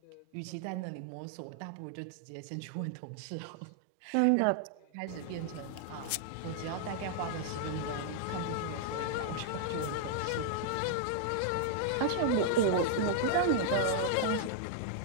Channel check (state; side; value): different; both; correlation -0.01